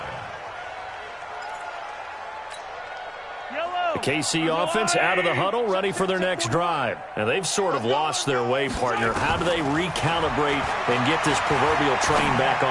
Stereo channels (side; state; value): both; identical; correlation 1.00